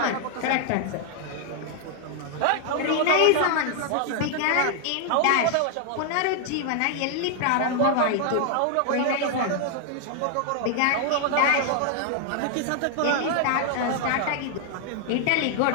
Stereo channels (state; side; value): different; both; correlation 0.00